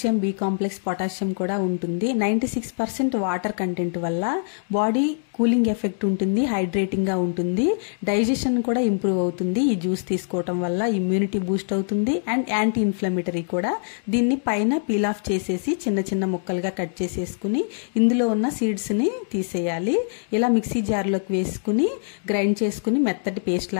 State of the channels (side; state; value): right; silent; digital silence